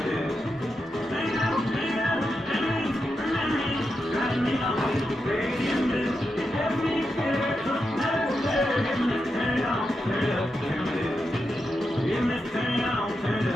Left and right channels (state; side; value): normal; both; correlation 0.87